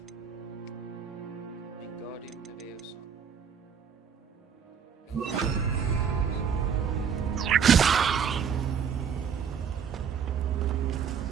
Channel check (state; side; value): quieter; left; 7.2 dB